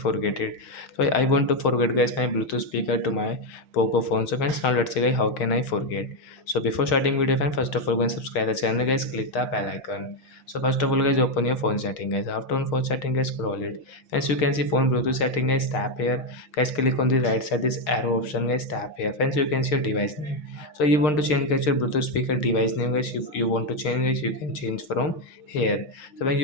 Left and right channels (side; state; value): right; late; 6.5 ms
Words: it? So I want to forget guys my Bluetooth speaker to my Poco phone. So friends, now let's see guys how can I forget. So before starting video friends, first of all go and subscribe the channel guys. Click the bell icon. So first of all guys, open your phone setting guys. After on phone setting guys, scroll it. As you can see phone Bluetooth setting guys, tap here guys, click on the right side this arrow option guys, tap here. Friends, you can see your device name. So you want to change guys your Bluetooth speaker device name guys. If you want to change guys, you can change from here. So when